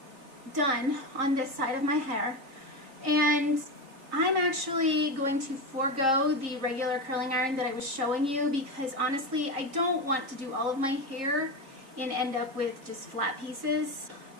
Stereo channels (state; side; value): late; left; 3.8 ms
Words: done on this side of my hair, and I'm actually going to forego the regular curling iron that I was showing you because honestly, I don't want to do all of my hair and end up with just flat pieces.